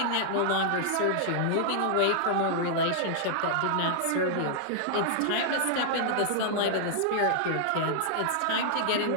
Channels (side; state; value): both; different; correlation -0.01